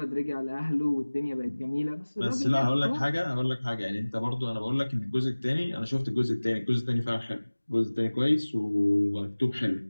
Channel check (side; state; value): both; inverted; correlation -1.00